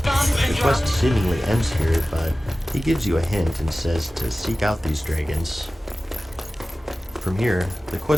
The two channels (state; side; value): normal; both; correlation 0.96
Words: The quest seemingly ends here, but he gives you a hint and says to seek out these dragons. From here, the